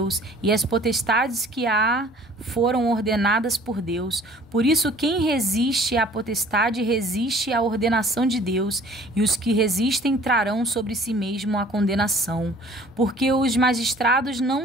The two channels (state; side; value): normal; both; correlation 0.52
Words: e as potestades que há foram ordenadas por Deus. Por isso, quem resiste à potestade resiste à ordenação de Deus, e os que resistem trarão sobre si mesmo a condenação. Porque os magistrados